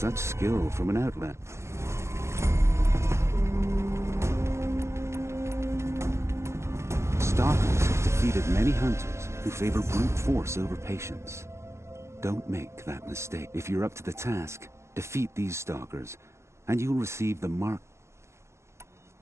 Such skill from an outlet. Stalkers have defeated many hunters who favor brute force over patience. Don't make that mistake. If you're up to the task, defeat these stalkers, and you'll receive the mark.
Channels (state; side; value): late; left; 0.13 ms